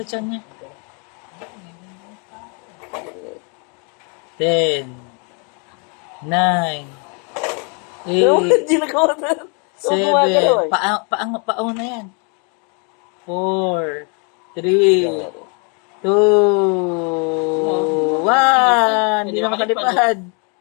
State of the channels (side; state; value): right; quieter; 36.1 dB